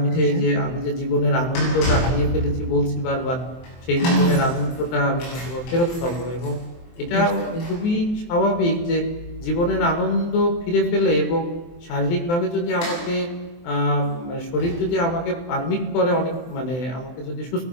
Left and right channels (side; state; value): right; late; 23 ms